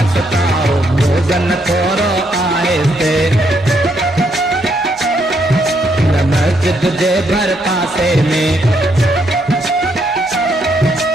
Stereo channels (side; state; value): both; normal; correlation 0.75